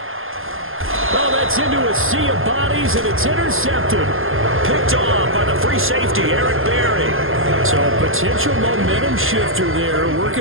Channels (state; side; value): late; left; 0.60 ms